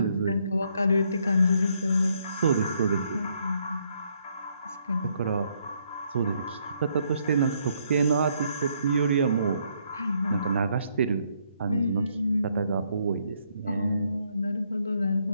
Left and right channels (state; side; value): inverted; both; correlation -0.71